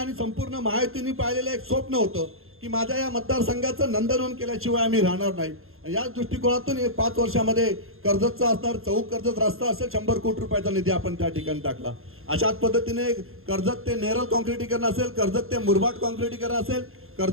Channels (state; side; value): late; left; 0.61 ms